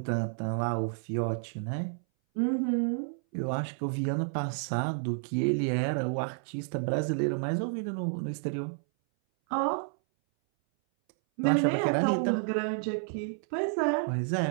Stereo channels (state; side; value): silent; left; 58 dB below the other